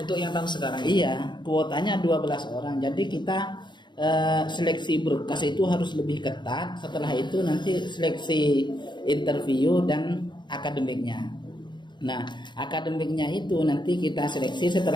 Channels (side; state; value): right; late; 0.22 ms